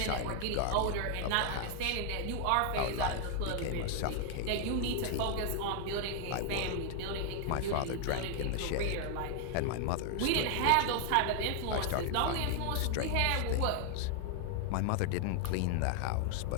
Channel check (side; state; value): both; different; correlation 0.00